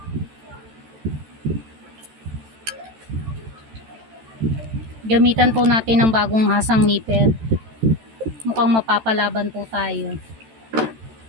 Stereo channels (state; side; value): late; left; 13 ms